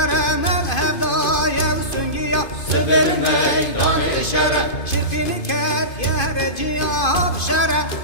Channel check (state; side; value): late; right; 2.5 ms